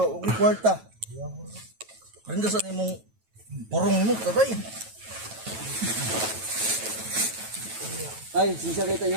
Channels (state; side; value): late; left; 9.2 ms